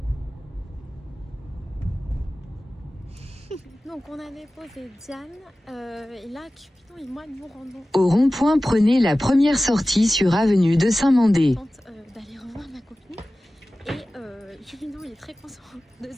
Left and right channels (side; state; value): both; normal; correlation 0.96